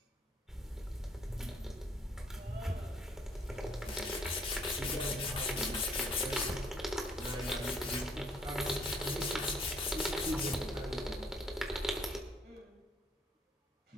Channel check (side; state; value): both; normal; correlation 0.64